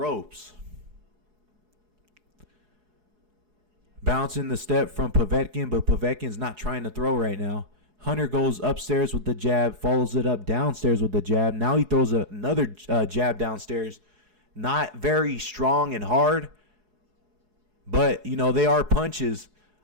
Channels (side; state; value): left; late; 4.7 ms